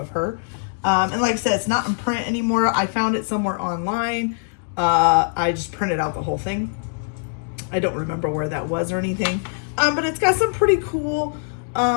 her. And like I said, it's not in print anymore. I found it somewhere online. I just printed out the whole thing. I don't remember where that was or anything. But it's got some pretty cool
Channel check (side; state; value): right; silent; digital silence